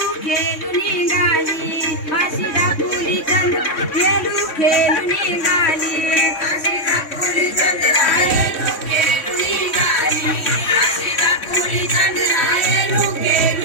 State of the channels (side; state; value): right; late; 3.6 ms